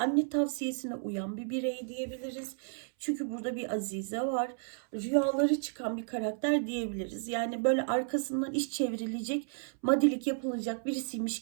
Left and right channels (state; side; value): silent; left; 56 dB below the other